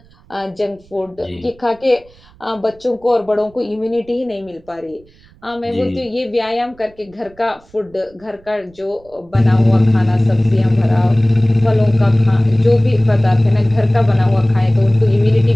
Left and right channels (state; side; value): noise; right; rumble, 28 dB below the sound